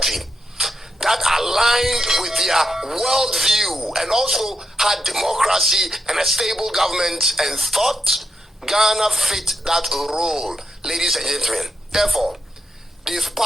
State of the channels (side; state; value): both; normal; correlation 0.83